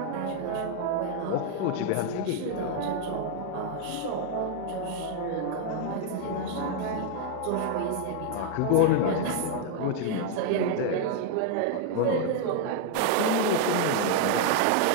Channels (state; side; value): different; both; correlation 0.00